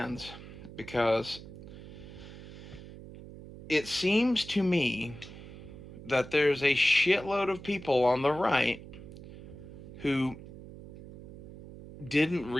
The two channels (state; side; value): noise; right; hum, 15 dB below the sound